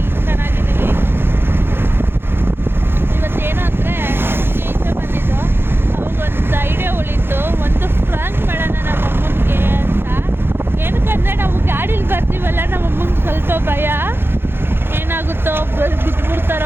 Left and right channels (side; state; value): left; late; 0.11 ms